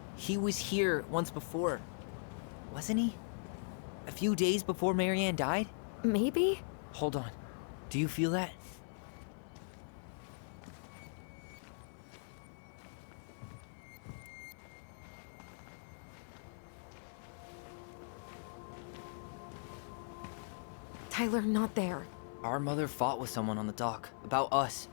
he was here once before, wasn't he? A few days before Marianne died? Maybe? Hold on. Do you feel that? Tyler, not there. Our mother fought with someone on the dock about us.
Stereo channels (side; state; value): right; silent; 51 dB below the other